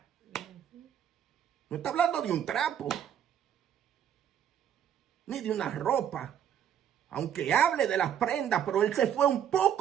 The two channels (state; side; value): quieter; left; 9.4 dB